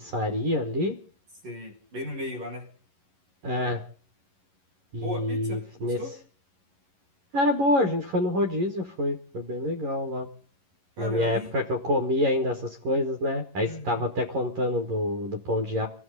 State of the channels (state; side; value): late; left; 11 ms